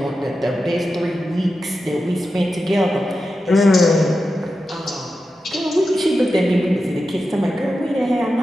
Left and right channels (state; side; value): normal; both; correlation 0.91